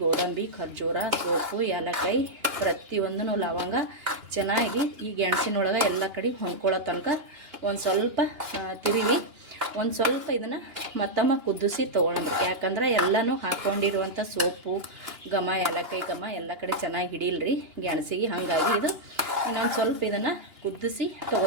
ಗೋಡಂಬಿ, ಖರ್ಜೂರ, ಸೋಪು, ಏಲಕ್ಕಾಯಿ, ಪ್ರತಿಯೊಂದೂ ಲವಂಗ ಚೆನ್ನಾಗಿ ಈ ಗೆಣಸಿನೊಳಗೆ ಎಲ್ಲ ಕಡೆ ಹೊಂದ್ಕೊಳ್ಳೋ ತನಕ ಒಂದು ಸ್ವಲ್ಪ ತಿರುವಿ ಒಂದು ಸ್ವಲ್ಪ ಇದನ್ನು ಮತ್ತೊಮ್ಮೆ ಕುದಿಸಿ ತೊಗೊಳಂಬ್ರಿ. ಯಾಕಂದ್ರೆ ಎಲ್ಲನೂ ಹಾಕ್ಕೊಂಡಿರುವಂಥ ಸೋಪು ಘಮ, ಏಲಕ್ಕಾಯಿ ಘಮ ಎಲ್ಲ ಕಡೆ ಚೆನ್ನಾಗಿ ಹಿಡಿಲ್ರಿ ಗೆಣಸಿಗೆ. ಹಾಗಾಗಿ ಇದು ಇನ್ನೊಂದು ಸ್ವಲ್ಪ ಇದನ್ನು ಕುದಿಸಿ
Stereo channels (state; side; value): late; left; 2.9 ms